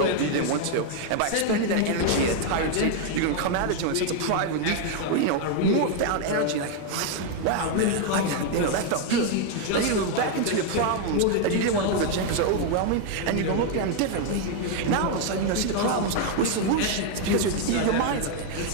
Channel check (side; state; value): both; different; correlation 0.00